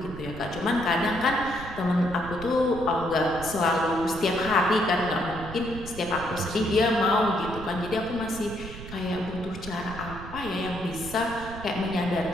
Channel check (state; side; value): noise; right; rumble, 12 dB below the sound